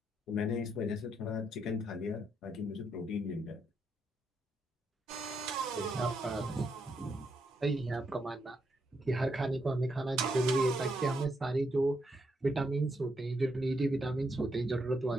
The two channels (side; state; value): both; normal; correlation 0.79